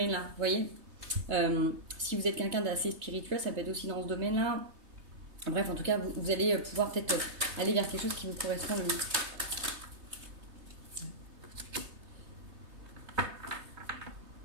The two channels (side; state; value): left; late; 3.2 ms